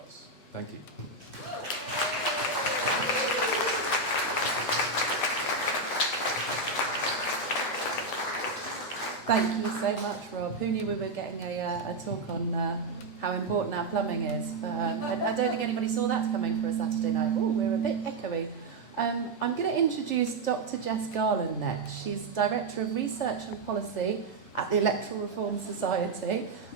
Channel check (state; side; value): quieter; left; 3.3 dB